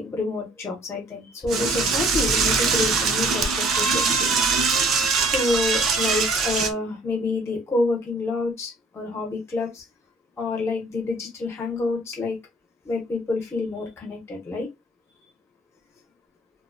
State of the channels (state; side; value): normal; both; correlation 0.56